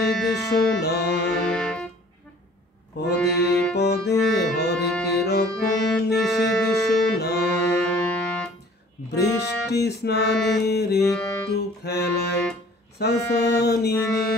শোনা, পদে পদে হরেক রকম নিষেধ শোনা, বৃষ্টি স্নানের একটু খেলায় সাসানি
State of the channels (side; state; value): both; normal; correlation 0.52